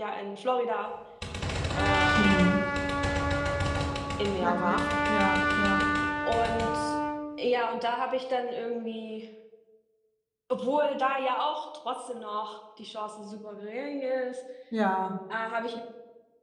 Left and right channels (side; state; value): both; identical; correlation 1.00